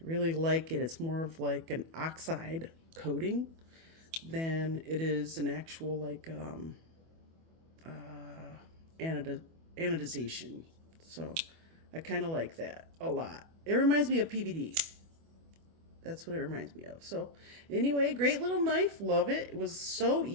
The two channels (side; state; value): left; late; 24 ms